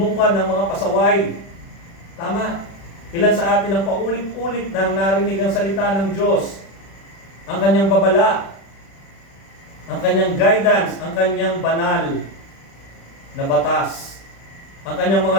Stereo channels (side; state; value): right; late; 36 ms